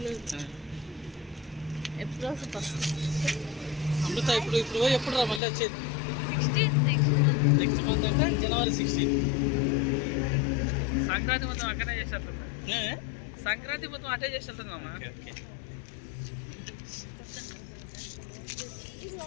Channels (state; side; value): drops out; right; at 5.4 s